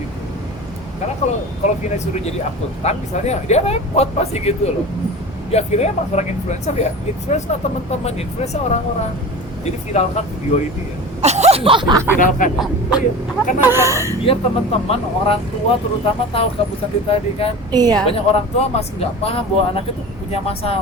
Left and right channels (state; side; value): normal; both; correlation 0.33